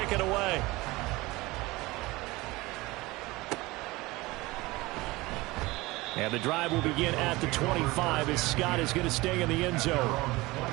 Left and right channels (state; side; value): quieter; left; 21.3 dB